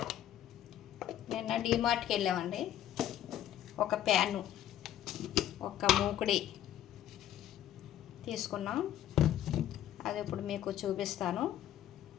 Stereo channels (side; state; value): right; quieter; 11.6 dB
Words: నిన్న డీమార్ట్కి వెళ్ళామండి. ఒక ప్యాను, ఒక మూకుడి తీసుకున్నాం. అది ఇప్పుడు మీకు చూపిస్తాను.